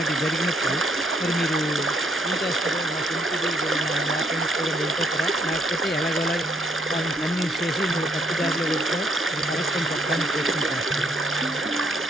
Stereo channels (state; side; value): normal; both; correlation 0.70